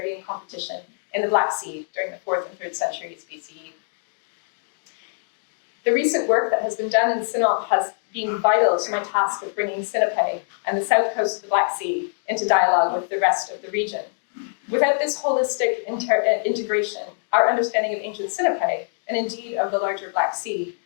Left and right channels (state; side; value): silent; right; 63 dB below the other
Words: and competition in the Black Sea during the 4th and 3rd centuries BCE. The recent work that has been done in Sinope has been vital to my task of bringing Sinope and the south coast of the Black Sea into dialogue with the rest of the region. Without this holistic integration, our understanding of ancient Sinope, and indeed of the larger Black Sea